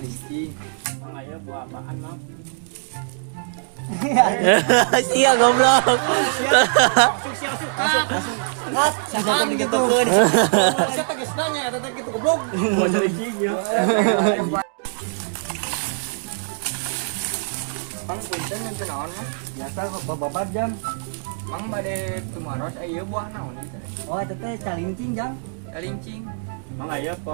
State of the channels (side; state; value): left; silent; digital silence